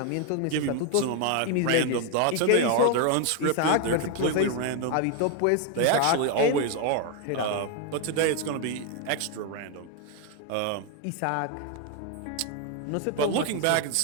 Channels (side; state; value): both; different; correlation 0.01